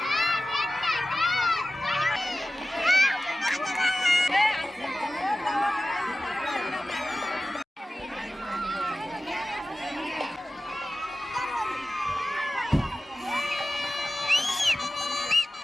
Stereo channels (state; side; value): normal; both; correlation 0.95